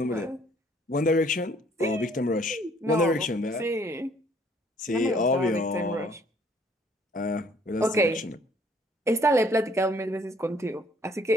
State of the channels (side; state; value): both; normal; correlation 0.61